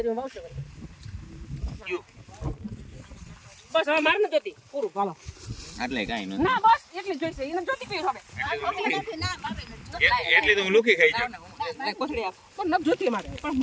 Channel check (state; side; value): identical; both; correlation 1.00